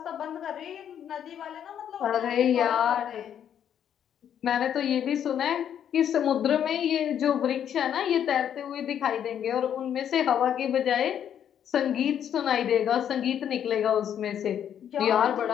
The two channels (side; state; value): right; quieter; 9.3 dB